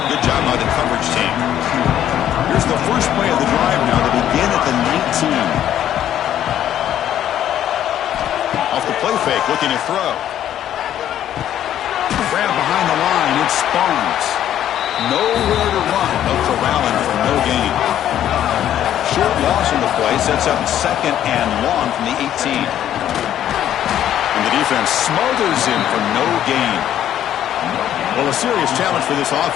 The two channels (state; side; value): quieter; right; 11.1 dB